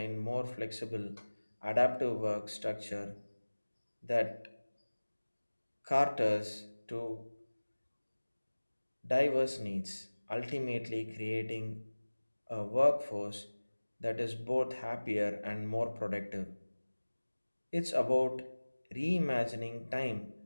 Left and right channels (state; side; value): inverted; both; correlation -1.00